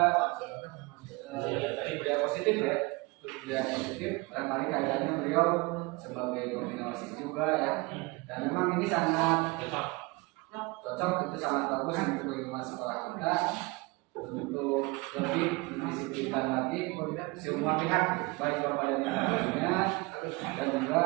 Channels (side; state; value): left; quieter; 24.8 dB